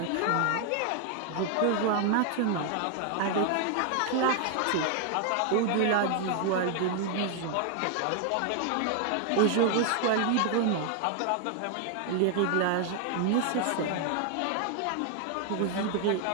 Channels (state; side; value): different; both; correlation 0.00